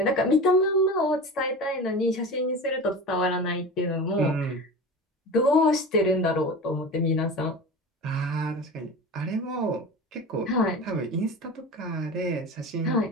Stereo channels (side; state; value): both; normal; correlation 0.31